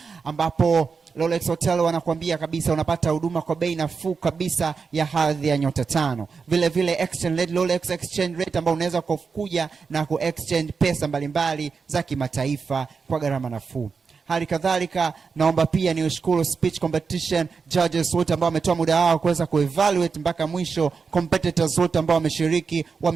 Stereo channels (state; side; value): quieter; left; 5.2 dB